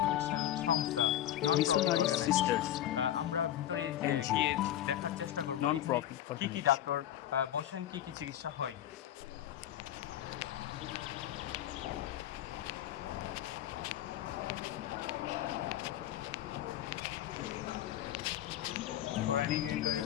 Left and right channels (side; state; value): right; quieter; 12.1 dB